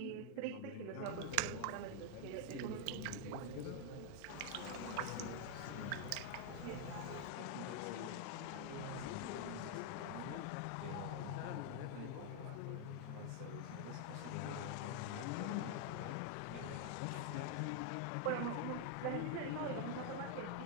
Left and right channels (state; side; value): different; both; correlation 0.00